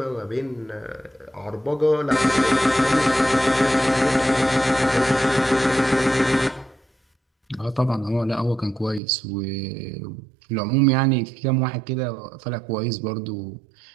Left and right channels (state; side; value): drops out; left; at 9.0 s